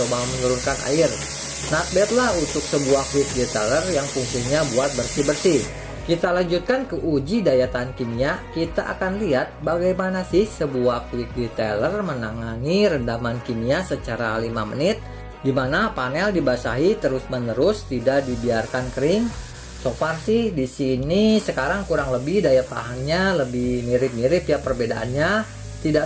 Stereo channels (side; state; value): both; identical; correlation 1.00